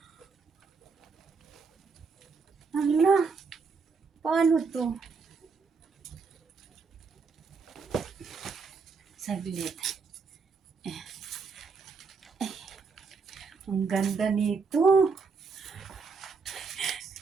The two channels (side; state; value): left; quieter; 4.9 dB